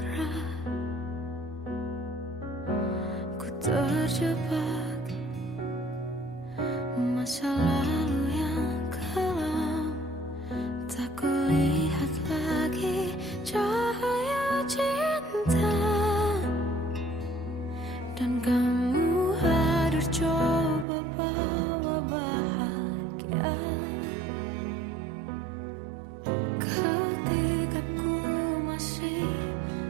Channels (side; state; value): left; drops out; at 20.9 s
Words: Ku terjebak masa lalu yang kelam. Tak kulihat lagi cahaya cinta. Dan kamu hadir coba bawa bahagia. Ketika ku masih